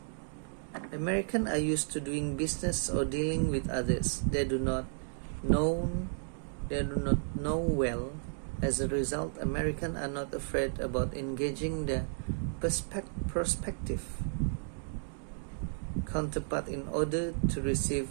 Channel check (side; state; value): left; silent; digital silence